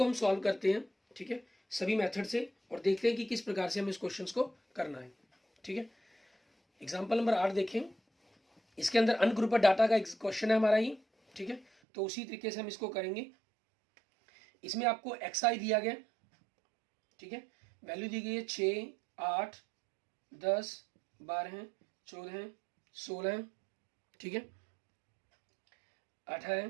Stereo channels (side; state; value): left; drops out; at 11.7 s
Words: हम सॉल्व करते हैं, ठीक है, सभी मेथड से, और देखते हैं कि किस प्रकार से हमें इस क्वेश्चन को करना है, ठीक है। एग्जाम्पल नंबर 8 देखें, इसके अंदर अनग्रुपर डाटा का क्वेश्चन है हमारा ये, ठीक है। तो उसी तरीके से हम इसको करेंगे। इसमें आपको एक्सआई दिया गया, ठीक है, वैल्यू दी गई है 6, 8, 10, 12, 14, 16, ठीक है,